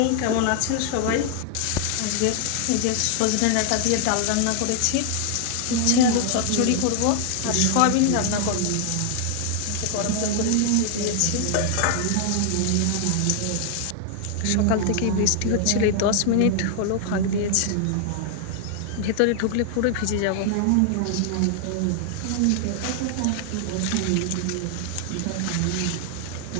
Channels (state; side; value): different; both; correlation 0.00